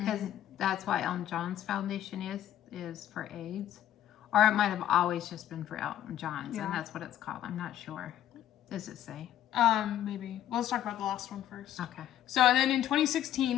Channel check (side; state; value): right; quieter; 11.6 dB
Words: that's why Elton John's foundation is for AIDS, or it might have always just been for Elton John's, Yeah. and that's what it's called. I'm not sure. Does it say? Maybe. Well, let's talk about the last one first. Okay. So, and then in 2016,